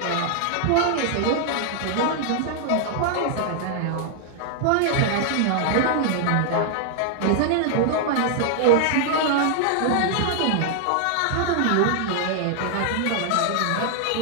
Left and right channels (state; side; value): different; both; correlation -0.01